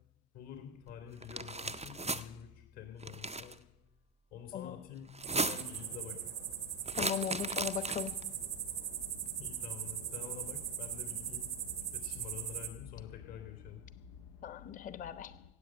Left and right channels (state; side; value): normal; both; correlation 0.09